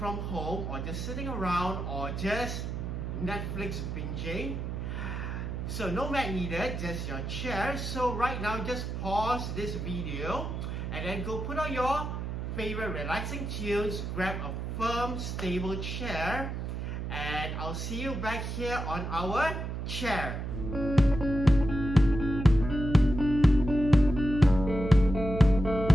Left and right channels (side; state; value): right; noise; hum, 4 dB below the sound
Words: home or just sitting around or just Netflix binging. So no mat needed, just your chair. So right now just pause this video and then go put on your favorite relaxing tunes, grab a firm stable chair, and I'll see you back here on our chair.